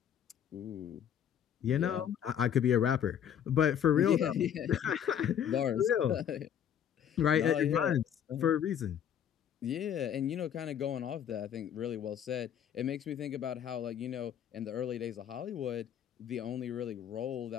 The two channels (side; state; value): right; quieter; 9.1 dB